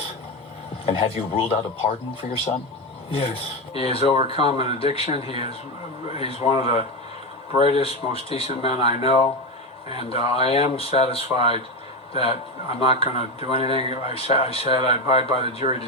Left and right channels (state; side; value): normal; both; correlation 0.15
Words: And have you ruled out a pardon for your son? Yes. He has overcome an addiction. He's one of the brightest, most decent men I know, and I am satisfied that I'm not going to do anything. I said I abide by the jury